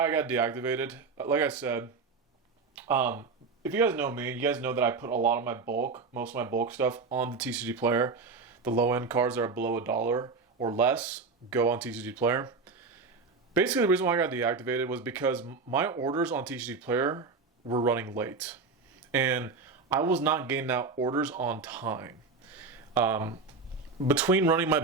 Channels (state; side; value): quieter; left; 4.5 dB